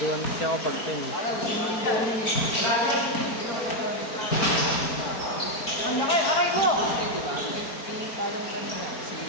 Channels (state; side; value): late; right; 4.4 ms